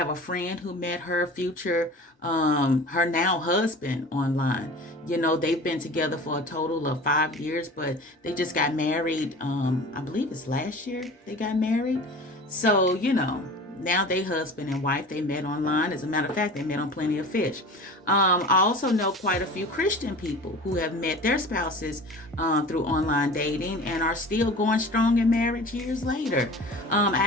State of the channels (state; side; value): normal; both; correlation 0.39